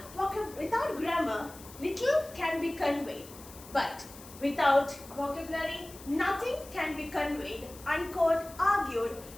grammar, little can be conveyed, but without vocabulary, nothing can be conveyed, unquote, argued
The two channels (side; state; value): left; noise; hiss, 18 dB below the sound